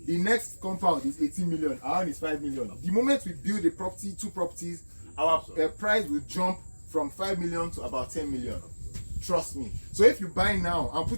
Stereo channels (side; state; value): both; inverted; correlation -1.00